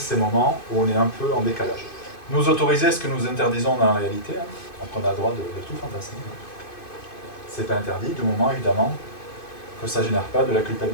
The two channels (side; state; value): right; late; 2.5 ms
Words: moments où on est un peu en décalage. Nous autoriser ce que nous interdisons dans la réalité, donc on a le droit de tout fantasmer. C'est pas interdit du moment évidemment que ça ne génère pas de la